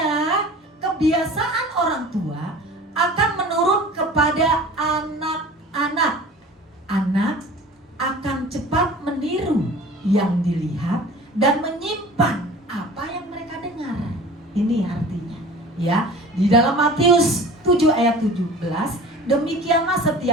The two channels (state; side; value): normal; both; correlation 0.42